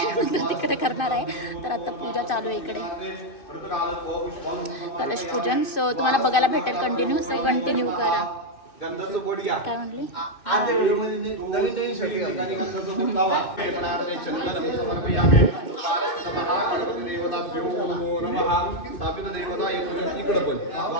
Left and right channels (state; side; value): late; right; 2.6 ms